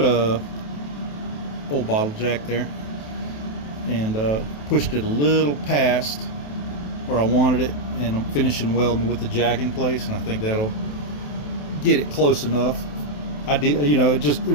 a old bottle jack there and pushed it a little past where I wanted it, and I'm finishing welding with the jack in place, and I think that'll get it close enough. I did, you know, it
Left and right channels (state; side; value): late; right; 28 ms